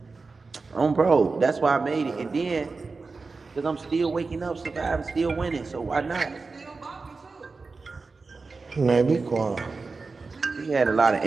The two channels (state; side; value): quieter; left; 4.1 dB